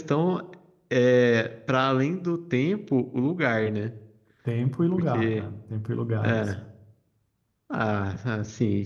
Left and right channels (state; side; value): identical; both; correlation 1.00